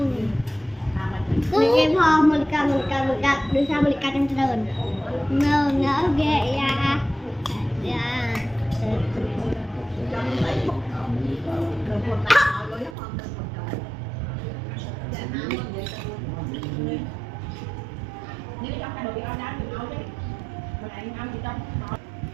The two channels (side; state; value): left; drops out; at 13.0 s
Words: Cái bò mình cầm đưa sang mình cầm trong trời. Nó ghê ya.